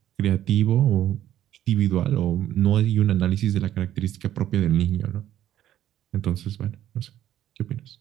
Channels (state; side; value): quieter; left; 11.9 dB